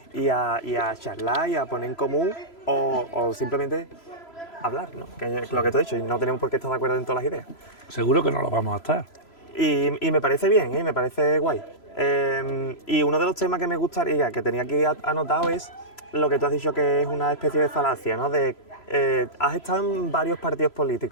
y a charlar y a poner en común o simplemente hablar, ¿no? Que es lo que tú has dicho, y no tenemos por qué estar de acuerdo en todas las ideas. Seguro que no lo vamos a estar. Y me parece bien, me parece guay. Y uno de los temas que me gustaría, que tenía aquí anotado, es lo que tú has dicho, que es una especie de falacia, ¿no? Has estado en varios partidos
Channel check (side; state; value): right; late; 3.0 ms